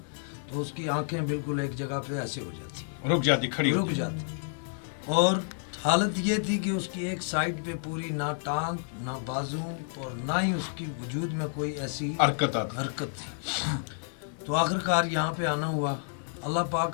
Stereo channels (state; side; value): silent; right; 58 dB below the other